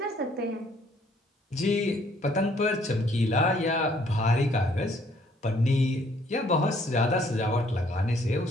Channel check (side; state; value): both; normal; correlation 0.63